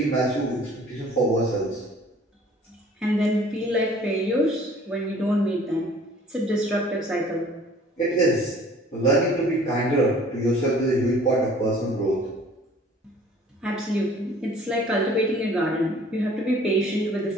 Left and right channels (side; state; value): both; normal; correlation 0.52